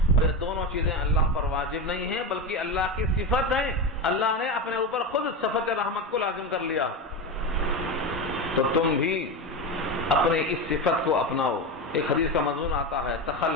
یہ دونوں چیزیں اللہ پر واجب نہیں ہیں بلکہ اللہ کی صفت ہے، اللہ نے اپنے اوپر خود صفت رحمت کو لازم کر لیا ہے، تو تم بھی اپنے اس صفت کو اپناؤ۔ ایک حدیث کا مضمون آتا ہے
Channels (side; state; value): both; normal; correlation 0.19